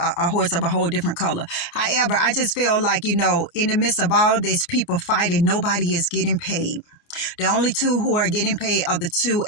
a horse of a whole different color. However, I just feel like, in the midst of all this people fighting, nobody is getting paid. The only two who are getting paid are the two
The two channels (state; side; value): late; right; 28 ms